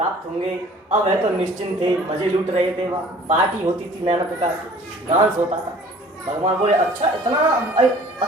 होंगे। अब वह तो निश्चिंत थे, मजे लूट रहे थे, वहाँ पार्टी होती थी नाना प्रकार की, डांस होता था। भगवान बोले अच्छा इतना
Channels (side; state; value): both; normal; correlation 0.50